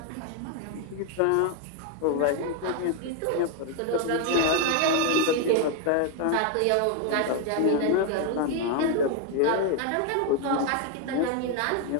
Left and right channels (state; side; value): different; both; correlation 0.01